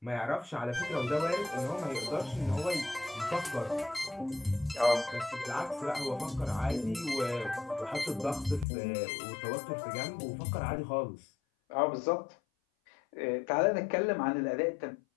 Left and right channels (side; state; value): right; drops out; at 8.7 s